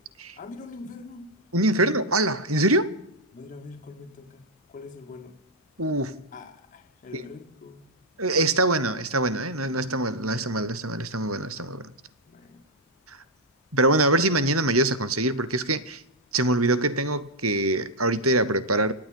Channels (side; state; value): both; normal; correlation -0.02